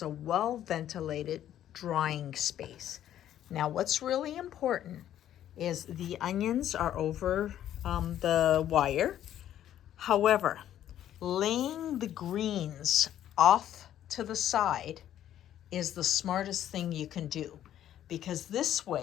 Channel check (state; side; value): quieter; right; 11.4 dB